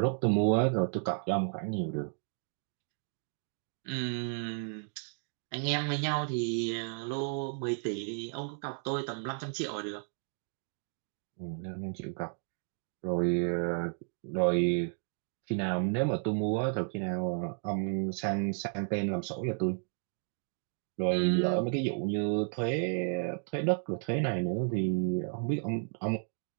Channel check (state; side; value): silent; left; 56 dB below the other